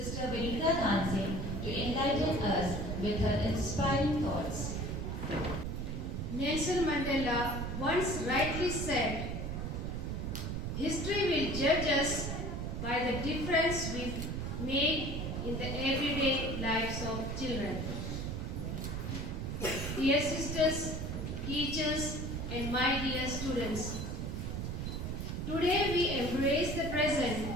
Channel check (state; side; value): noise; right; rumble, 3 dB below the sound